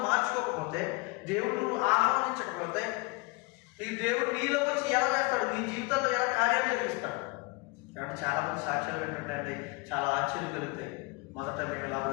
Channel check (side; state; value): right; quieter; 26.5 dB